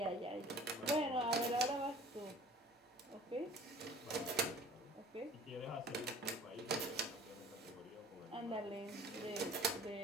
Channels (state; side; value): normal; both; correlation 0.48